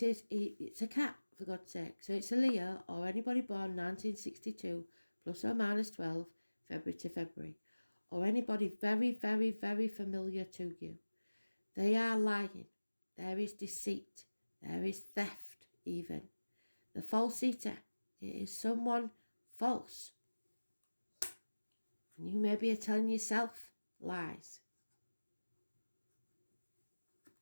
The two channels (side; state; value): both; inverted; correlation -1.00